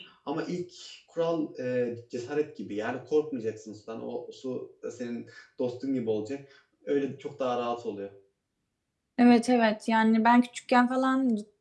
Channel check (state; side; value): identical; both; correlation 1.00